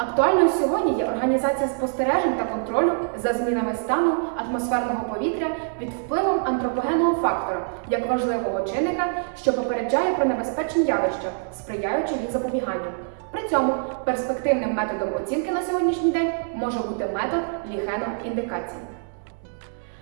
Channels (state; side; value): silent; left; 62 dB below the other